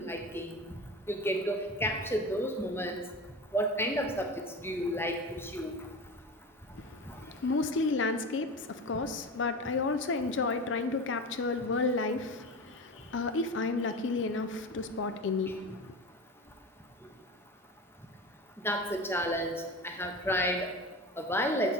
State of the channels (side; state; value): both; normal; correlation 0.28